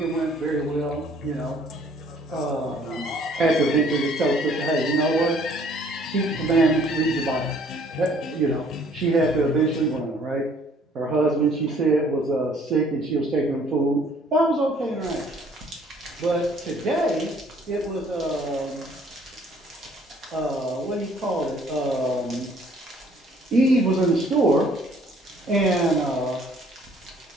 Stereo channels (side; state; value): both; normal; correlation 0.59